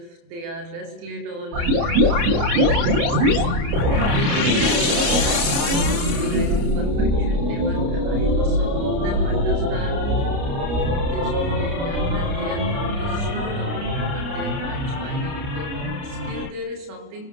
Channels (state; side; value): late; left; 29 ms